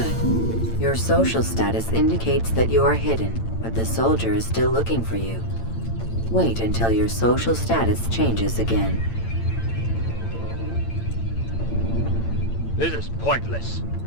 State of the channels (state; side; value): late; right; 8.9 ms